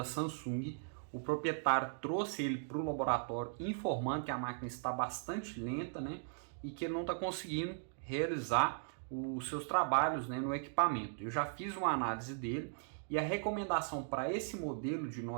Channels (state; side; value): silent; left; digital silence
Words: Samsung. O proprietário trouxe ele para o laboratório informando que a máquina está bastante lenta, né? E que ele não está conseguindo realizar os seus trabalhos, né, no equipamento. Eu já fiz uma análise dele e a recomendação para esse modelo de